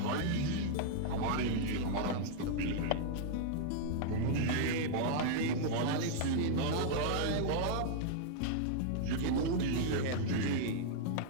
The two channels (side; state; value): both; different; correlation -0.01